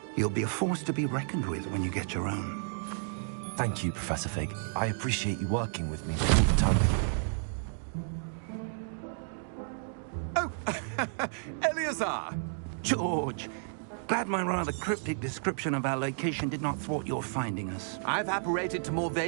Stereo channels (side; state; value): left; silent; digital silence